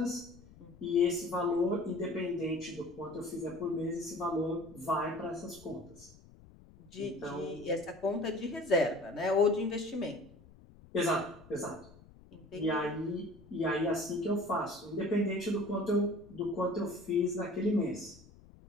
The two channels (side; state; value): left; noise; rumble, 22 dB below the sound